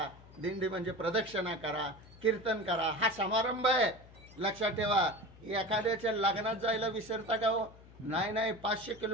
दिंडी म्हणजे प्रदक्षिणा करा, कीर्तन करा, हा समारंभ आहे। लक्षात ठेवा, एखाद्याच्या लग्नात जायला विसरता का हो? नाही 500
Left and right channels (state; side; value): noise; left; hum, 21 dB below the sound